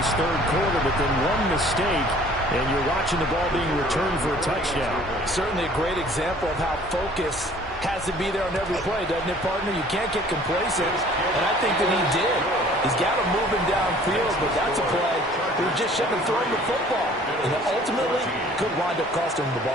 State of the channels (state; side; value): normal; both; correlation 0.53